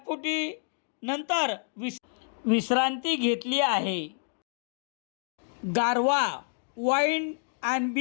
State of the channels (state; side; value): silent; right; 59 dB below the other